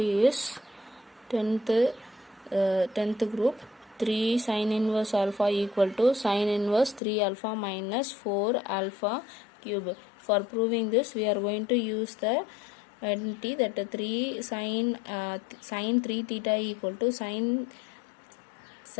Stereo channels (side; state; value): right; drops out; at 7.0 s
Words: is 10th group. 3 sin inverse alpha equal to sin inverse 3 alpha minus 4 alpha cube. For proving this, we are going to use the identity that 3 sin 3 theta equal to sin